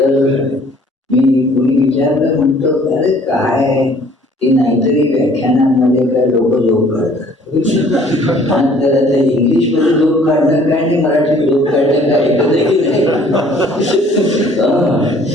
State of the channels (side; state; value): both; normal; correlation 0.56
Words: मी कोणी विचारलं, म्हणतो अरे काय ते नाहीतरी व्याख्यानांमध्ये काय लोक जोक काढतात. तर आता इंग्लिशमध्ये जोक काढणं काय आणि मराठीत जोक काढणं काय एकच